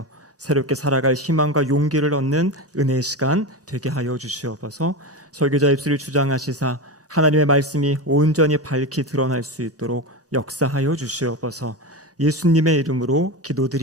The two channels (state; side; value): normal; both; correlation 0.20